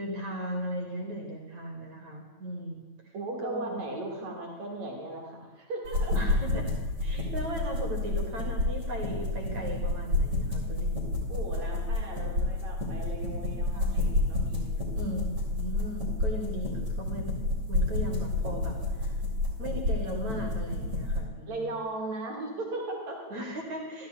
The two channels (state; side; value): late; left; 9.0 ms